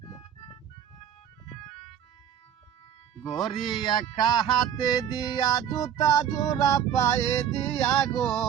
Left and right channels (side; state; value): left; quieter; 9.4 dB